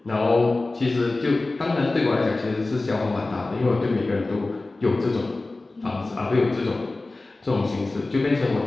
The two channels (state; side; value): quieter; right; 3.2 dB